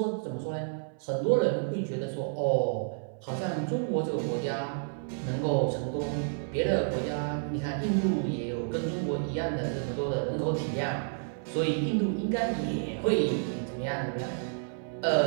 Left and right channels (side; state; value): left; silent; 58 dB below the other